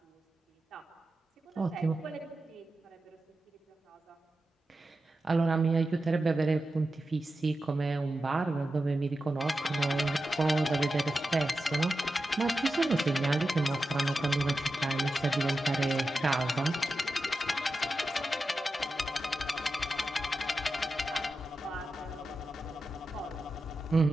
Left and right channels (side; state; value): both; normal; correlation 0.91